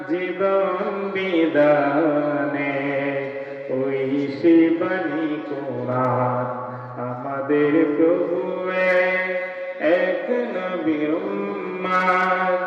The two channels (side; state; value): both; identical; correlation 1.00